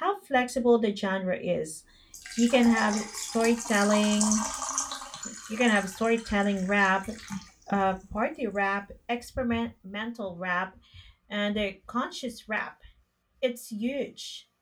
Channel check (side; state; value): both; identical; correlation 1.00